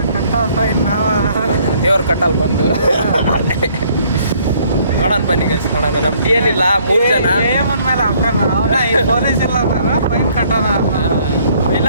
ದೇವ್ರ ಕಟ್ಟಲ್ ಬಂದು ನೋಡೋಣ ಬನ್ನಿ ಗೈಸ್. ನೋಡೋಣ. ನಮ್ಮ DL ಇಲ್ಲ, 3 ಜನ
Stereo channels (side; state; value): both; inverted; correlation -0.62